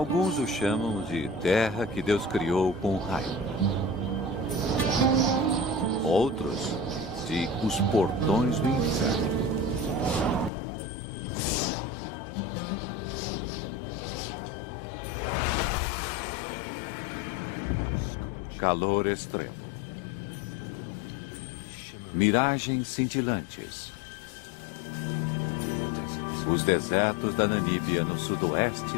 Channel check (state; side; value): drops out; right; at 10.5 s